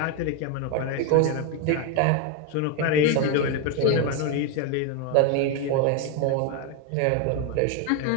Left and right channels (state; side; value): different; both; correlation 0.02